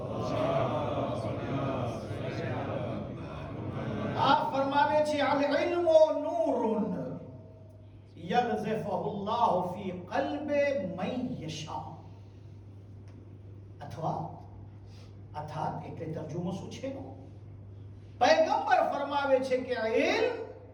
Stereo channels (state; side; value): identical; both; correlation 1.00